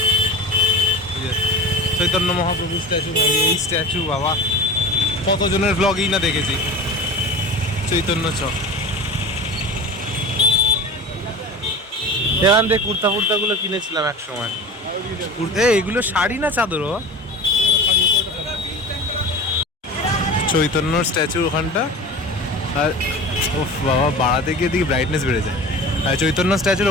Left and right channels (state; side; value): normal; both; correlation 0.34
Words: চৈতন্য মহাপ্রভু স্ট্যাচু, এই স্ট্যাচু বাবা কতজনের ব্লগই না দেখেছি। চৈতন্য চক, এখান থেকে কুর্তা ফুর্তাগুলো কিনেছিলাম এক সময়। এগুলো শাড়ি না চাদর? চৈতন্যর স্ট্যাচু ওখানটা। আর ও বাবা বাড়াতে গিয়ে দিকে ব্রাইটনেস বেড়ে যায়। আর চৈতন্য